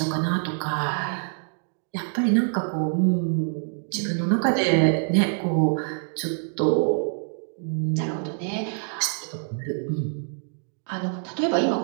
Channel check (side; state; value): left; silent; 61 dB below the other